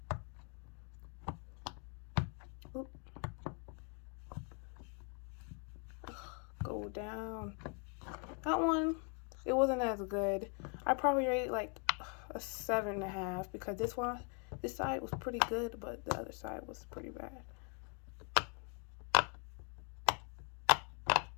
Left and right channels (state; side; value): quieter; right; 39.0 dB